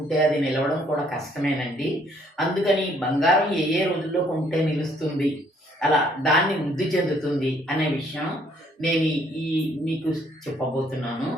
అది నిలవడం కూడా కష్టమేనండి. అందుకని బంగారం ఏ ఏ రోజుల్లో కొంటే నిలుస్తుంది, అలా దాన్ని వృద్ధి చెందుతుంది అనే విషయం నేను ఈ మీకు చెప్పబోతున్నాను.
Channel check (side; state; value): both; normal; correlation 0.65